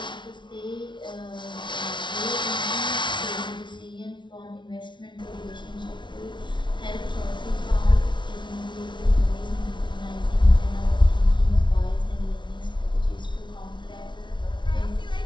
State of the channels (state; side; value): late; right; 0.23 ms